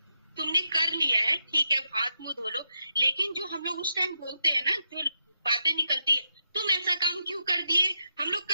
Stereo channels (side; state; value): both; inverted; correlation -0.82